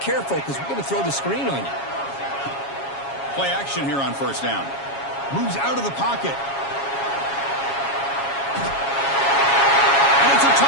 because we're going to throw the screen on you. Play action here on 1st down. Moves out of the pocket. And it's a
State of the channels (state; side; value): late; right; 7.3 ms